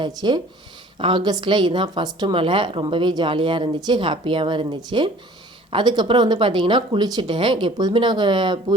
ஆகஸ்ட்டில் இதுதான் ஃபஸ்ட்டு மழை. ரொம்பவே ஜாலியாக இருந்துச்சு, ஹாப்பியாகவும் இருந்துச்சு. அதுக்கப்புறம் வந்து பார்த்திங்கன்னா குளிச்சுட்டேன். எப்போதுமே நாங்கள்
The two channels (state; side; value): normal; both; correlation 0.50